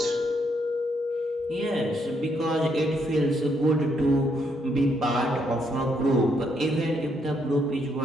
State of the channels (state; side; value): normal; both; correlation 0.74